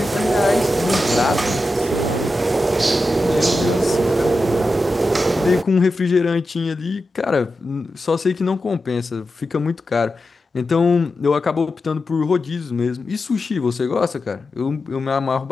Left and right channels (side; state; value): both; normal; correlation 0.90